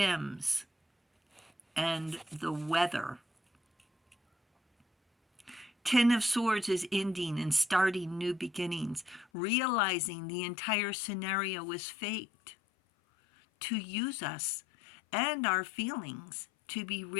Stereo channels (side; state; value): right; drops out; at 9.2 s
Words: and the weather. 10 of Swords is ending and starting new beginnings, realizing the entire scenario is faked to use us and our feelings to be